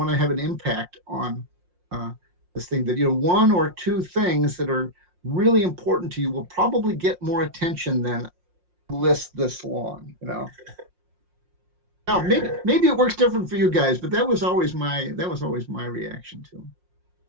to have an impact on this thing, that one or two things that are really important to you will probably get more attention than a list this long. Now maybe it works different for you guys, but that was always my reaction to them.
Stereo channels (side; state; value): left; late; 5.6 ms